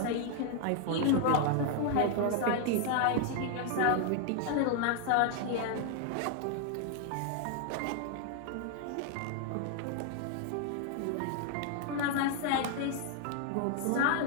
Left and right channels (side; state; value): both; different; correlation 0.00